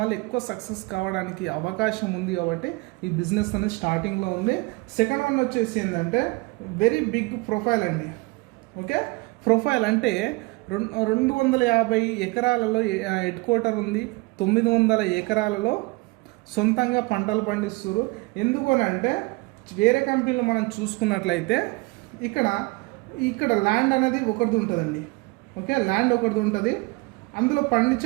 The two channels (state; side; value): quieter; left; 24.9 dB